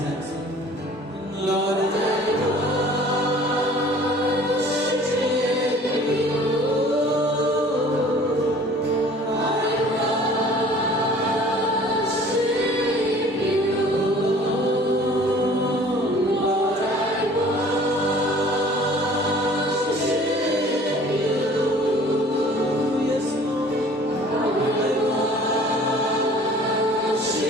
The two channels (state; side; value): normal; both; correlation 0.50